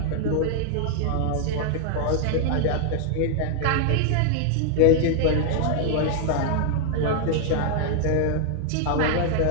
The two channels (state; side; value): different; both; correlation -0.01